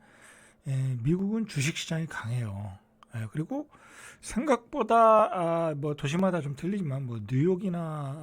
미국은 주식시장이 강해요. 그리고 생각보다 뭐 도시마다 좀 틀리지만 뭐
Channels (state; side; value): identical; both; correlation 1.00